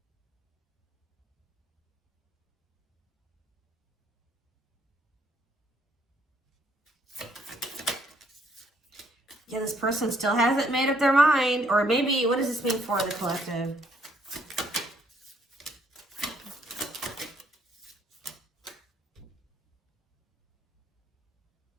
Yeah, this person still hasn't made up their mind. Or maybe, what does this mean for the collective?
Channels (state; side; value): normal; both; correlation 0.68